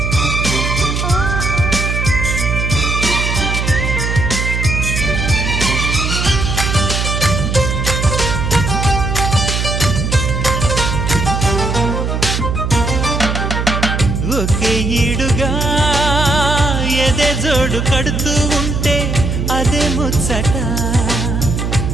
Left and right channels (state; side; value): noise; right; hum, 1 dB below the sound